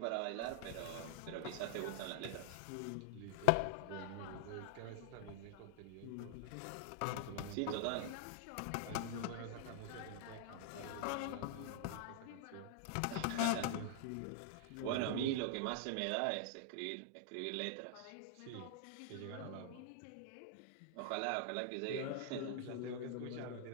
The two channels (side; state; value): both; different; correlation 0.00